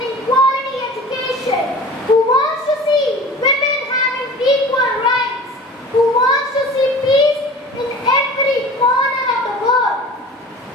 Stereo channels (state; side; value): normal; both; correlation 0.40